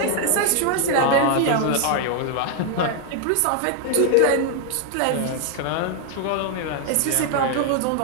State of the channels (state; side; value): different; both; correlation 0.00